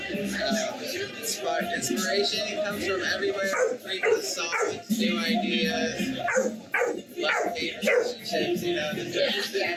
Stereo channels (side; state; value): both; identical; correlation 1.00